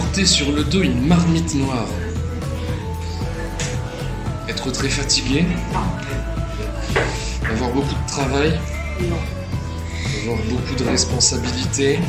sur le dos une marmite noire. Être très fatigué. Avoir beaucoup de travail. Non. Avoir beaucoup de responsabilités.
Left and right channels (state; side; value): identical; both; correlation 1.00